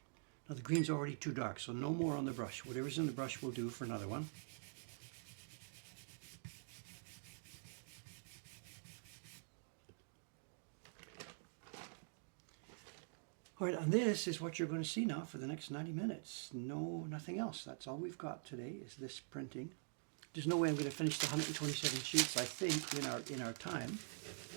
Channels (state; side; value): silent; left; digital silence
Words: Now the green's already too dark, so no more on the brush. Whatever's in the brush will do for another one. All right, and this is what you're going to see now for the next 90 minutes. No, nothing else. That's all we've got today is this printing. There's no way I'm going to finish the 127 sheets, I think, in our time.